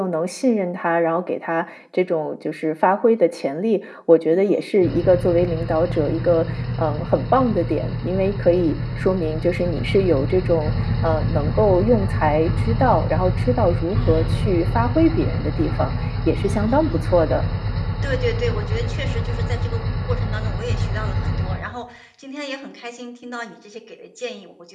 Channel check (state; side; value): identical; both; correlation 1.00